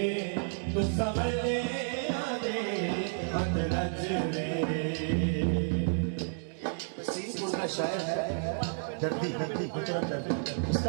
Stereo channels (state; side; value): silent; left; digital silence